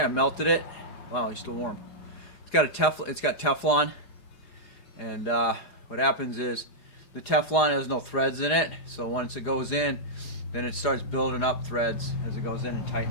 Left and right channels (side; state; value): right; late; 4.9 ms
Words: I melted it. Wow, it's still warm. It's got Teflon, and what happens is the Teflon has no threads in it, so once it goes in, then it starts building up threads as it goes in and